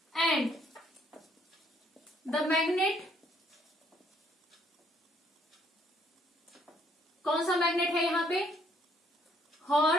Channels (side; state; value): both; normal; correlation 0.66